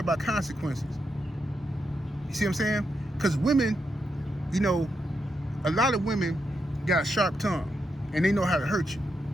about consequences. You see what I'm saying? Because women, you know, a lot of women got a sharp tongue, and they know how to hurt you.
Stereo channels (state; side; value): normal; both; correlation 0.84